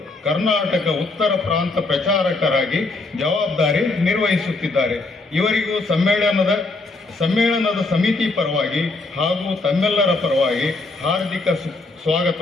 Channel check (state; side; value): quieter; right; 3.3 dB